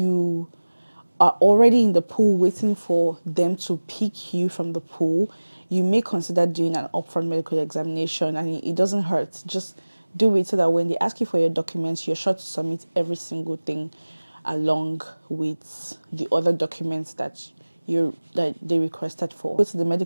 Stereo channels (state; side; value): inverted; both; correlation -1.00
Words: are already in the pool waiting for them to pick you from the pool, you may consider doing an upfront medical examination, and it doesn't hurt. Just do it so that when they ask you for your documents, you're sure to submit every single thing along with the other documents that that they requested for. Go to the